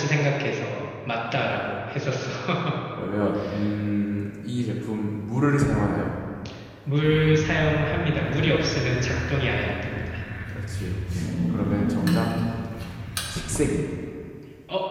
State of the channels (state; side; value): identical; both; correlation 1.00